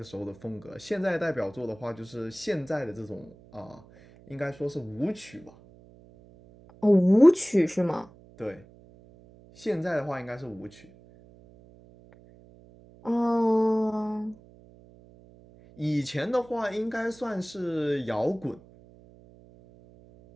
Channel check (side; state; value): right; noise; hum, 24 dB below the sound